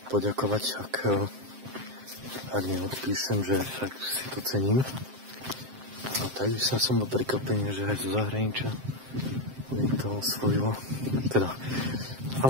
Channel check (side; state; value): left; late; 7.6 ms